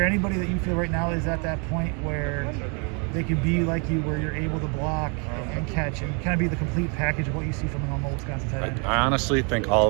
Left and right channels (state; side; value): quieter; left; 35.7 dB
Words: anybody that you feel right now is at that point where they could be like you, where you're able to block and catch and kind of be the complete package of what you see from a normal Wisconsin tight end? I honestly think all